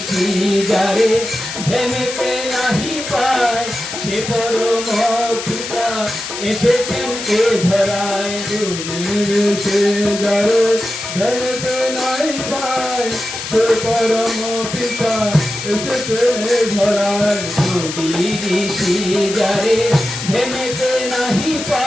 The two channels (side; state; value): left; noise; hiss, 7 dB below the sound